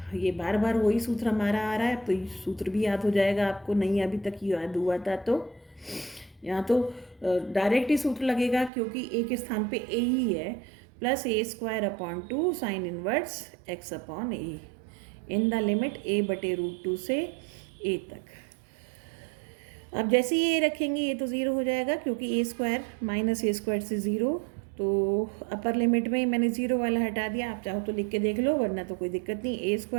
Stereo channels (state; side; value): drops out; left; at 8.7 s